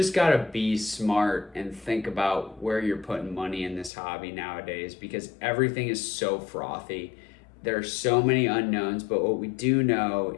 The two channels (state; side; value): drops out; right; at 3.9 s